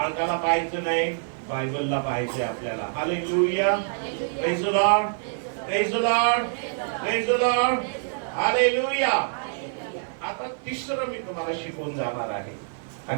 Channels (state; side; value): silent; left; digital silence